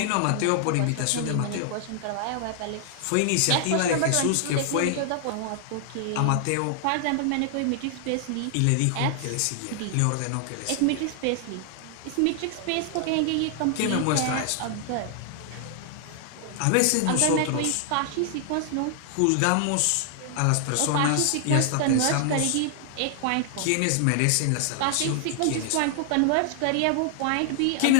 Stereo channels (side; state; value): both; different; correlation 0.00